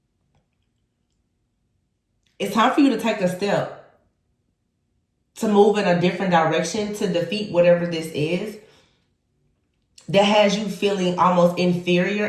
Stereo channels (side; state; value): both; identical; correlation 1.00